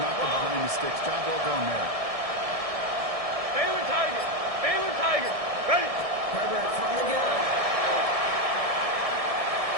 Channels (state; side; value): late; left; 1.6 ms